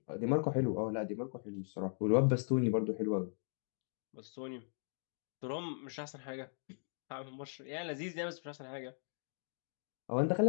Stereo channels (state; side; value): silent; right; digital silence